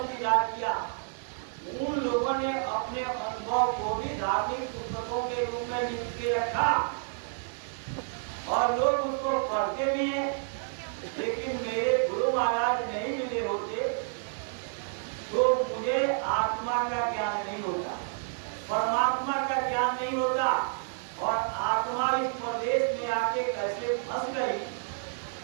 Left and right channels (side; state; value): left; silent; digital silence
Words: दीदार किया, उन लोगों ने अपने अनुभव को भी धार्मिक पुस्तकों के रूप में लिख के रखा और लोग उसको पढ़ते भी हैं। लेकिन मेरे गुरु महाराज नहीं मिले होते तो मुझे आत्मा का ज्ञान नहीं होता, परमात्मा का ज्ञान नहीं होता, और आत्मा इस प्रदेश में आके कैसे फंस गई